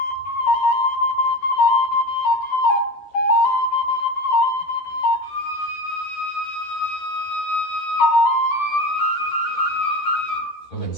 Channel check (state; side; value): late; right; 13 ms